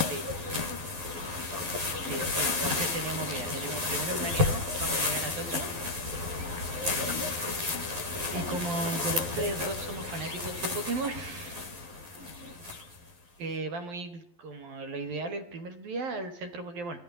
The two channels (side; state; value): left; late; 12 ms